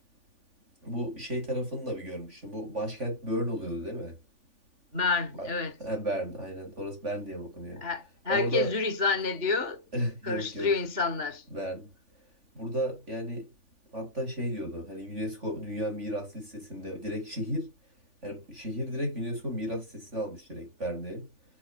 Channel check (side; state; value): left; late; 3.5 ms